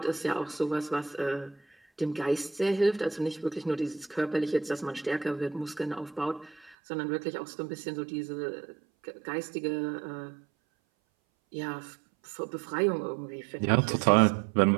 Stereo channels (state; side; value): drops out; left; at 6.8 s